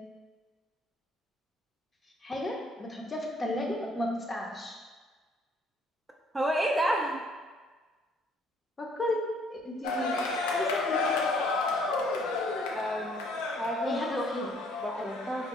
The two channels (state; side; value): normal; both; correlation 0.62